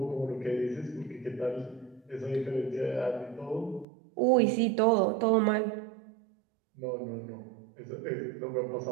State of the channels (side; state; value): left; drops out; at 3.9 s